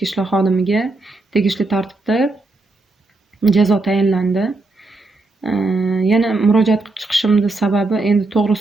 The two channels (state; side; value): quieter; left; 3.2 dB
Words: ishlar xodimiga tegishli tartibda jazo tayinlandi. Yana murojaat qilib chiqishimning sababi endi